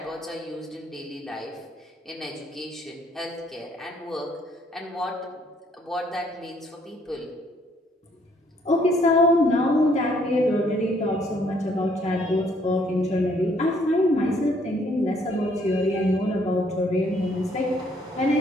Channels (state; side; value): normal; both; correlation 0.66